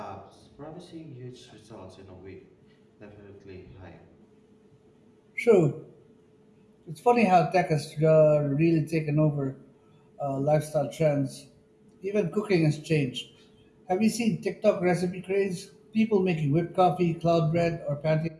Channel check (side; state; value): both; identical; correlation 1.00